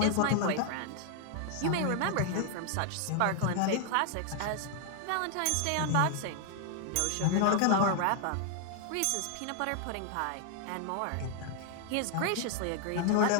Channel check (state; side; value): different; both; correlation 0.00